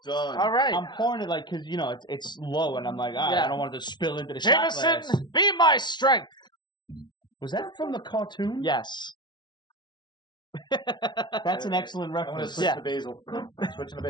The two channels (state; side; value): late; right; 0.21 ms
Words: done. All right. I'm pouring it like because it's low, and I'm like, I don't want it to spill into the shot glass. Jameson, be my strength. Was that from the cartoon? Yes. That's an excellent reference. Switch to basil. Switching to